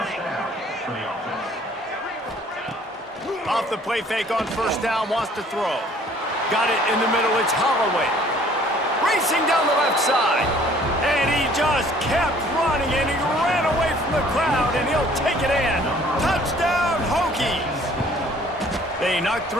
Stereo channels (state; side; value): normal; both; correlation 0.56